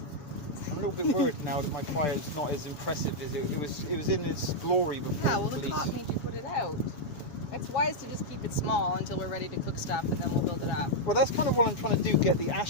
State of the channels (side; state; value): right; late; 7.1 ms